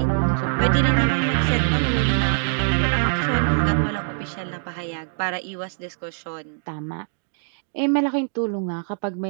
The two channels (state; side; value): silent; left; digital silence